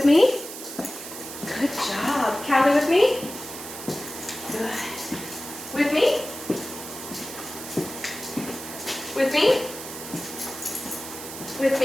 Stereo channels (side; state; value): right; noise; hiss, 10 dB below the sound